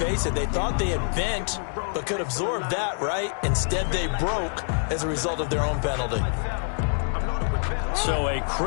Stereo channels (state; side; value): silent; right; 57 dB below the other